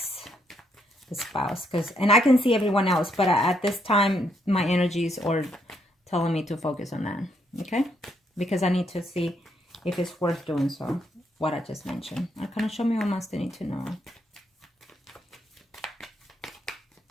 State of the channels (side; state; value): both; normal; correlation 0.74